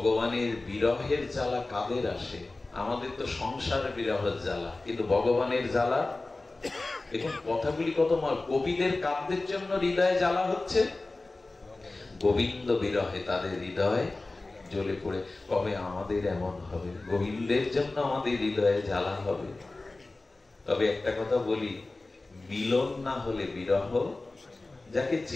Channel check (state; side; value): quieter; right; 3.2 dB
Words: বিরহের জ্বালা কাদের আসে? আমাদের তো সংসার বিরহের জ্বালা, কিন্তু ভগবানের জ্বালা, দেখুন কথাগুলি কত মার। গোপীদের কাব্যের জন্য হৃদয়ে জ্বালা হচ্ছে, গোবিন্দ বিরহে তাদের হৃদয় জ্বলে পড়ে। কবে আমাদের এমন হবে? গোবিন্দের জন্য আমাদের হৃদয়ে জ্বালা হবে। তবে একটা কথা বলি, মিলন না হলে বিরহ, যাকে